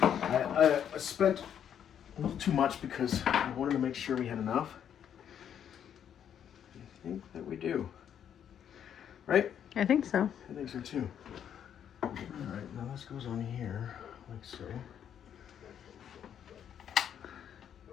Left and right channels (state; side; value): quieter; right; 9.1 dB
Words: I spent a little too much because I wanted to make sure we had enough. I think that we do. Right? I think so. I think so too. Alright, now this goes on here, like so.